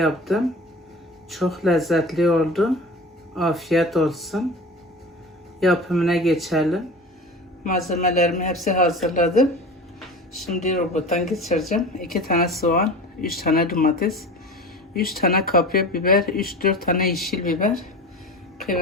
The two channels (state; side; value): normal; both; correlation 0.34